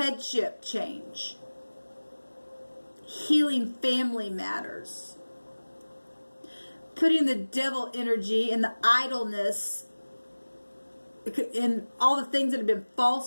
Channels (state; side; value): inverted; both; correlation -1.00